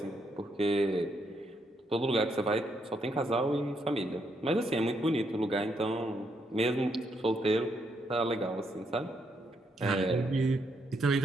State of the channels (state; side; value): normal; both; correlation 0.76